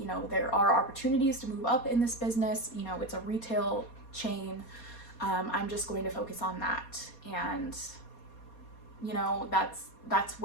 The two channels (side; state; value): right; late; 4.2 ms